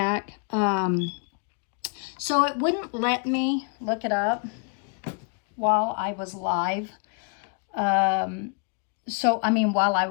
So it wouldn't let me look it up while I was live. While I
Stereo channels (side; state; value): right; quieter; 36.2 dB